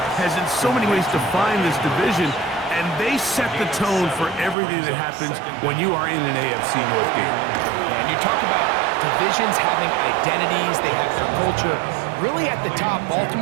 has in so many ways defined this division, and they set the tone for everything that happens when you are in an AFC North game. And you talk about divisions having identities, they have their culture. Really at the top,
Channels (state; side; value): drops out; left; at 4.5 s